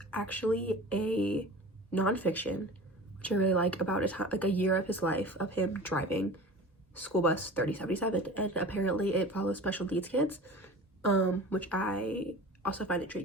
actually a nonfiction, which I really like, about a year of his life of him driving school bus 3077, and apparently it follows special needs kids, which I also find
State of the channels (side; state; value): both; normal; correlation 0.38